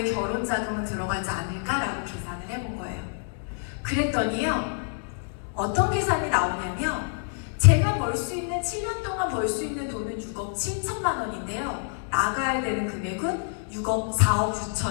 결혼 자금은 들어가지 않을까라고 계산을 해본 거예요. 그랬더니요, 어떤 계산이 나오냐면, 제가 벌 수 있는 7년 동안 벌 수 있는 돈은 6억 7천만 원인데요. 나가야 되는 금액은 4억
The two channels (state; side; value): silent; right; 60 dB below the other